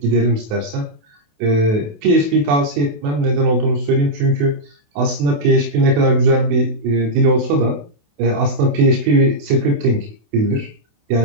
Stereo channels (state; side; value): late; left; 28 ms